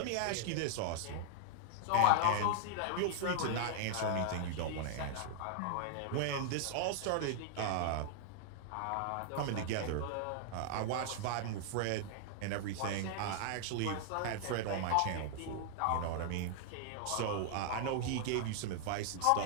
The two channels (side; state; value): both; different; correlation -0.01